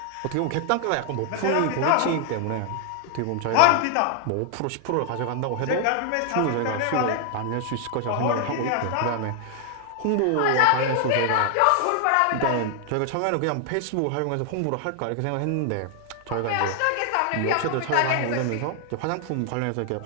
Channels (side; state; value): both; different; correlation 0.00